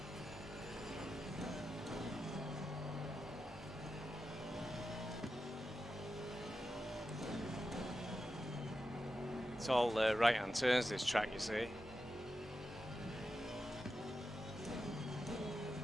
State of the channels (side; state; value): both; normal; correlation 0.90